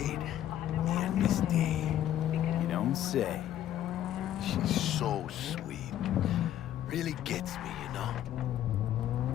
Me and Misty. You don't say. She's so sweet. Really gets me, you know?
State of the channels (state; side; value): quieter; right; 11.7 dB